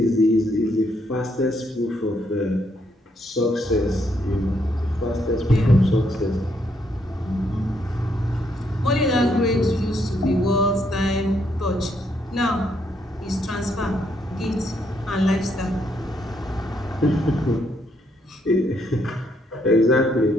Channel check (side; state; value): both; normal; correlation 0.74